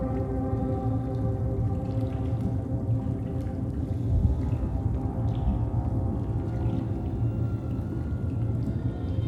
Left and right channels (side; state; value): both; identical; correlation 1.00